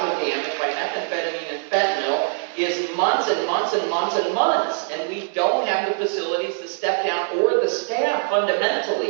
damage by methamphetamine and fentanyl is months and months and months and months. And we don't have the facilities to step down or the staff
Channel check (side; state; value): left; silent; 59 dB below the other